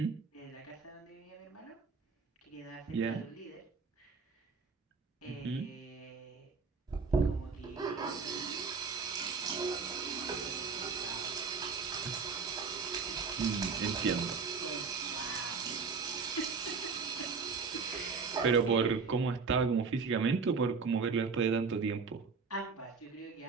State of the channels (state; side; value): quieter; left; 5.0 dB